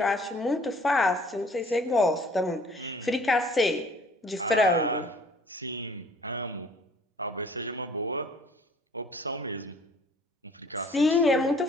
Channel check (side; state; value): both; normal; correlation 0.55